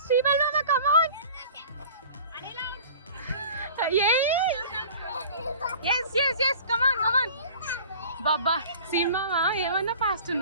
బాబా సినిమా ఏమన్నా ఫాస్ట్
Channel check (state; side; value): inverted; both; correlation -0.43